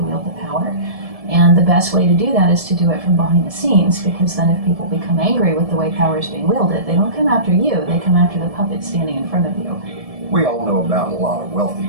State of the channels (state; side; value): late; left; 1.7 ms